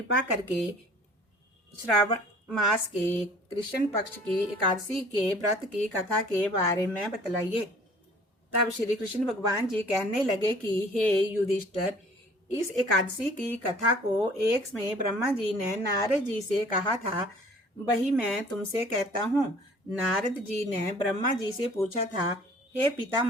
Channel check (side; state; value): both; normal; correlation 0.52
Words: करके श्रावण मास के कृष्ण पक्ष की एकादशी के व्रत की कथा के बारे में बतलाइए। तब श्री कृष्ण भगवान जी कहने लगे कि हे युधिष्ठिर, इस एकादशी की कथा को एक समय ब्रह्मा जी ने नारद जी से कहा था, वही मैं तुमसे कहता हूँ। नारद जी ने ब्रह्मा जी से पूछा था, हे